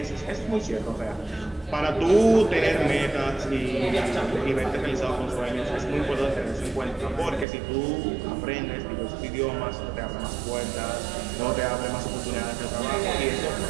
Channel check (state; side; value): drops out; left; at 7.5 s